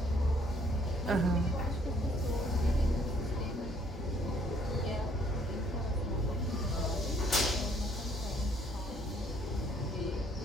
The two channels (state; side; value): normal; both; correlation 0.65